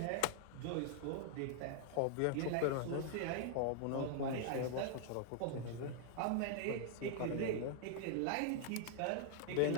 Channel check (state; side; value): different; both; correlation 0.00